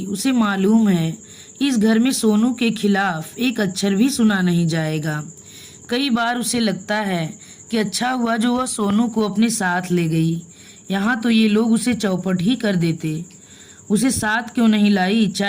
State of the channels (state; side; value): identical; both; correlation 1.00